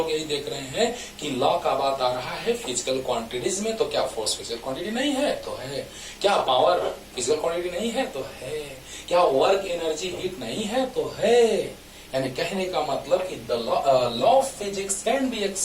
यही देख रहे हैं कि लॉ का बात आ रहा है फिजिकल क्वांटिटीज में। तो क्या फोर्स फिजिकल क्वांटिटी नहीं है? तो है। क्या पावर फिजिकल क्वांटिटी नहीं है? तो है। क्या वर्क, एनर्जी, हीट नहीं है? तो है। यानी कहने का मतलब कि the law of physics can be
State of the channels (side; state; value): both; identical; correlation 1.00